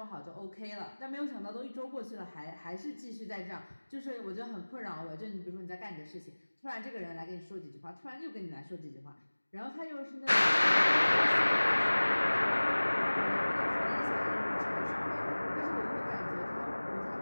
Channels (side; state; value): both; inverted; correlation -1.00